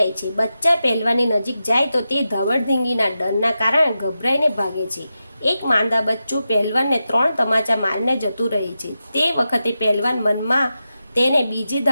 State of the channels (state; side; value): inverted; both; correlation -0.90